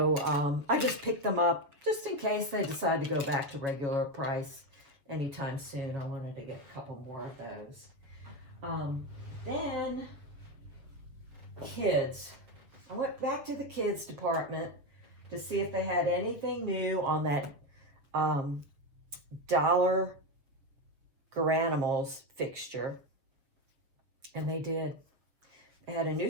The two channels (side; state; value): left; late; 7.3 ms